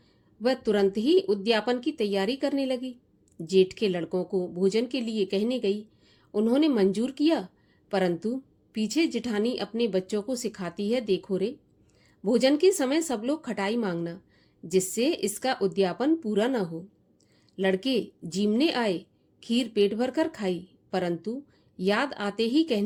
वह तुरंत ही उद्यापन की तैयारी करने लगी। जेठ के लड़कों को भोजन के लिए कहने गई। उन्होंने मंजूर किया, परंतु पीछे जिठानी अपने बच्चों को सिखाती है, देखो रे, भोजन के समय सब लोग खटाई मांगना, जिससे इसका उद्यापन पूरा न हो। लड़के जीमने आए, खीर पेट भर कर खाई, परंतु याद आते ही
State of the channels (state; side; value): identical; both; correlation 1.00